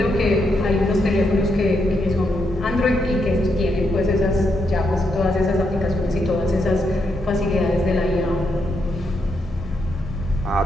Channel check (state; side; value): normal; both; correlation 0.80